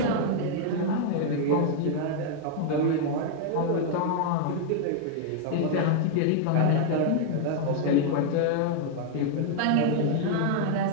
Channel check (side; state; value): both; different; correlation 0.00